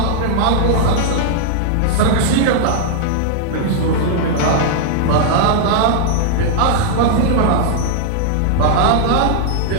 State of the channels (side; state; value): both; different; correlation -0.01